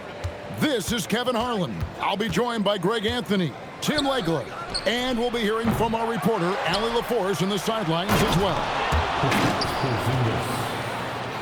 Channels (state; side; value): identical; both; correlation 1.00